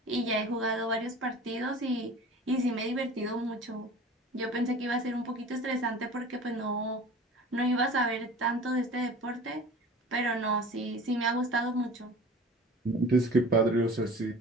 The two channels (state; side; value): normal; both; correlation 0.41